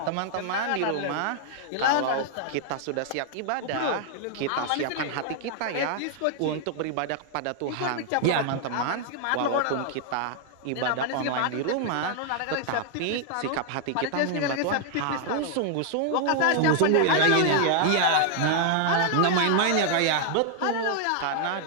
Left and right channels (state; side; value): different; both; correlation 0.00